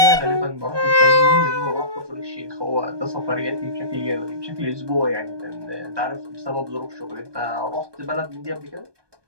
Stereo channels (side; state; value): left; late; 1.2 ms